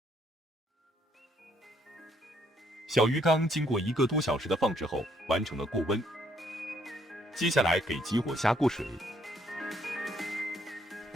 小鱼缸经过1个多小时的放置后，完成了过温。接下来给激活虾过水。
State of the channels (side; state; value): both; normal; correlation 0.69